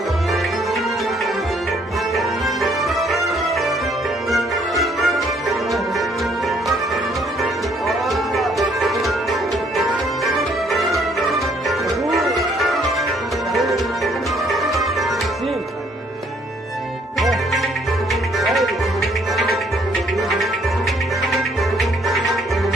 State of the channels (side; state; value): both; normal; correlation 0.65